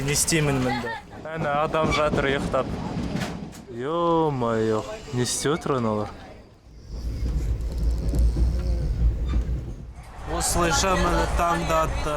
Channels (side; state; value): both; identical; correlation 1.00